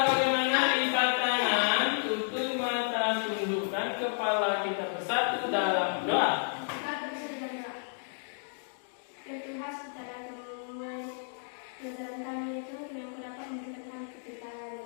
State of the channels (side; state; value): right; silent; digital silence